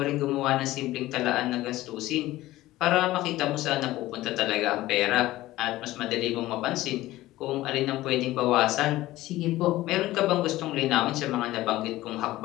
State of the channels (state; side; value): quieter; right; 16.7 dB